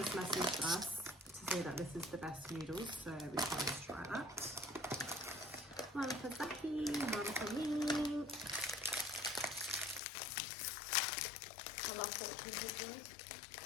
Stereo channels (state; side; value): drops out; right; at 10.0 s